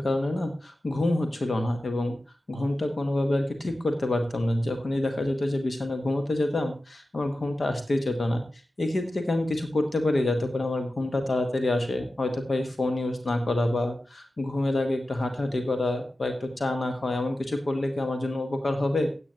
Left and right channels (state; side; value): normal; both; correlation 0.94